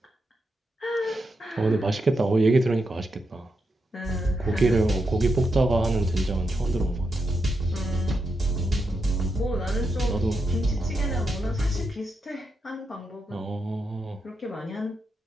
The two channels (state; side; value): normal; both; correlation 0.84